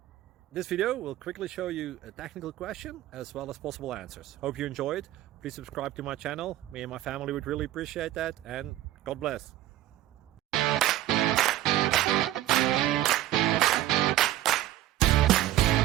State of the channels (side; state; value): left; quieter; 14.3 dB